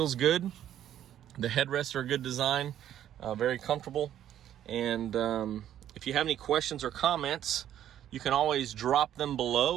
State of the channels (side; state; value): left; quieter; 11.1 dB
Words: good. The headrests are a good design, very comfortable. And if you have any questions or comments, you can always drop them